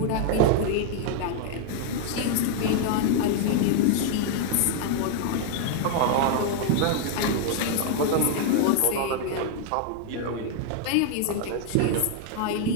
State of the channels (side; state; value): both; different; correlation 0.00